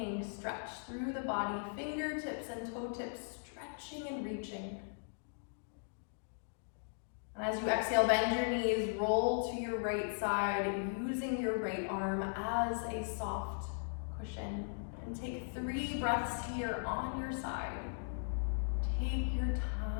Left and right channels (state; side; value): silent; right; digital silence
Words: stretch through the body, fingertips and toe tips stretching and reaching. And as you exhale, bend your knees, roll to your right side, using your right arm as a soft cushion. And take 3 breaths here on your side. Take your